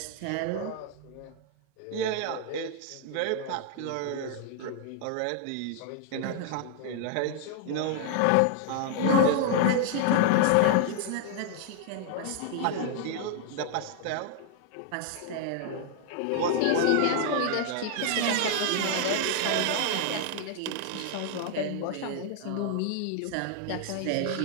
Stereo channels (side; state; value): both; different; correlation 0.00